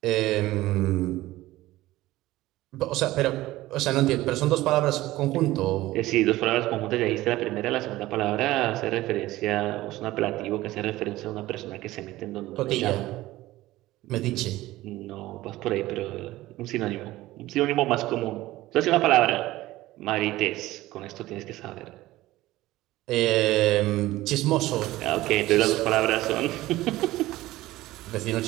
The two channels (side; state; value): left; quieter; 17.0 dB